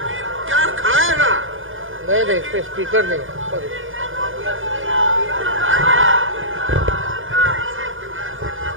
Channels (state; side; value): late; left; 0.58 ms